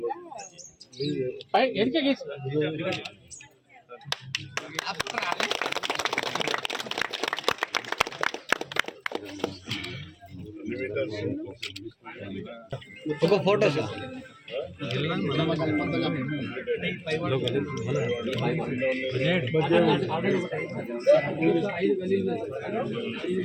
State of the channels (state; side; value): identical; both; correlation 1.00